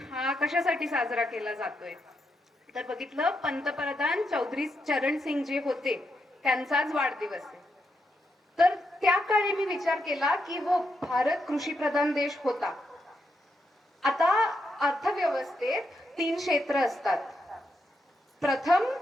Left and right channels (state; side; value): normal; both; correlation 0.82